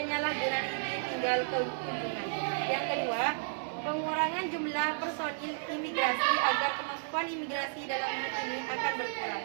izin tinggal kunjungan. Yang kedua, pengurangan jumlah personil imigrasi agar kemampuan imigrasi dalam hal ini akan berkurang.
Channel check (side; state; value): left; silent; 56 dB below the other